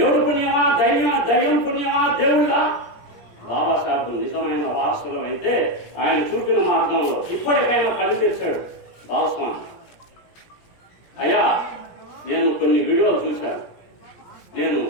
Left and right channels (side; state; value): right; late; 17 ms